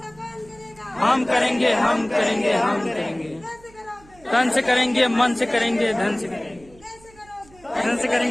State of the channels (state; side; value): noise; right; hum, 26 dB below the sound